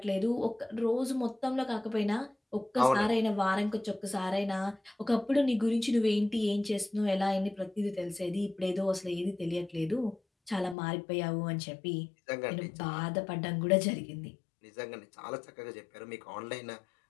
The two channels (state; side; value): drops out; right; at 10.8 s